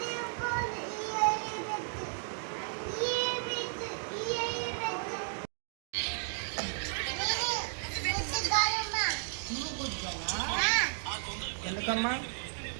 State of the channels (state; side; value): silent; left; digital silence